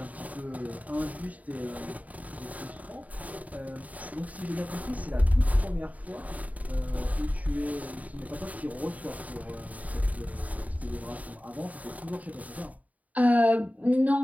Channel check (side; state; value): left; late; 0.072 ms